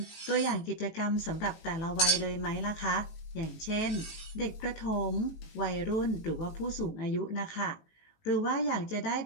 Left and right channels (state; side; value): late; right; 19 ms